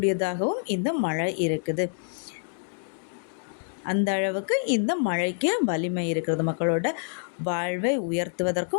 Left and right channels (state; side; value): silent; right; digital silence